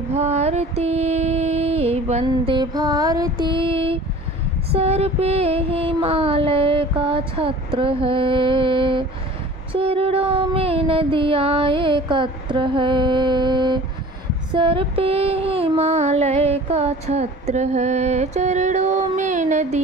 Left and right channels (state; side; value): normal; both; correlation 0.44